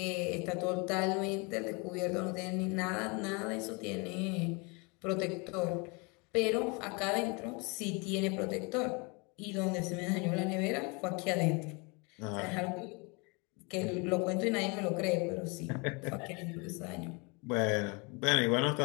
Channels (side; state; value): right; quieter; 30.2 dB